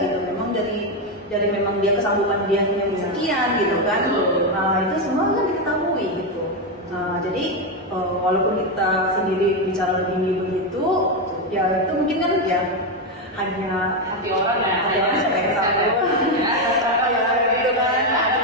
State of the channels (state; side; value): normal; both; correlation 0.07